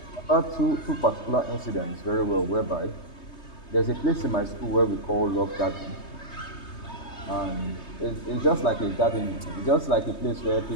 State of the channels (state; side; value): late; right; 3.2 ms